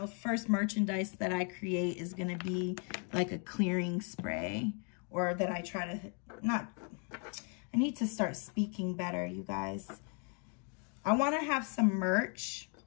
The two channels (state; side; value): quieter; right; 39.0 dB